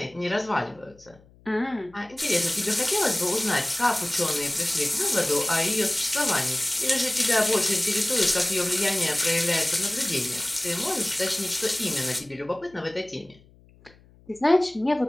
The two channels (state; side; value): noise; left; hum, 27 dB below the sound